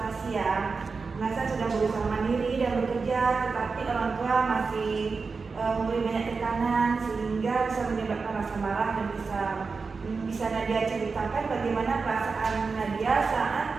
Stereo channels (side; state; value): left; quieter; 4.6 dB